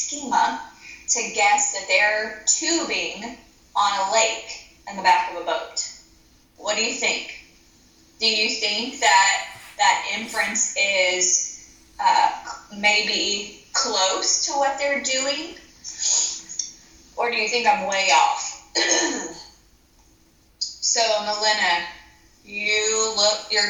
to guess that they're tubing on a lake in the back of a boat. What do you think? Do you think that inference is maybe close to what they're doing? Or do you think I'm way off? So, Melina,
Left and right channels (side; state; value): both; identical; correlation 1.00